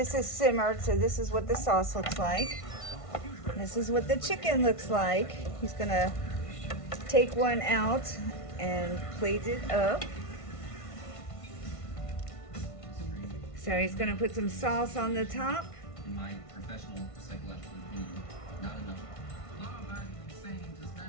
is simmered, so this is what the sauce looks like. This is what the chicken looks like. He's gonna take one out and plate it up. So he's gonna put some sauce on the top. In my professional psychological opinion, not enough. Law-abiding saying does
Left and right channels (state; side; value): late; right; 1.5 ms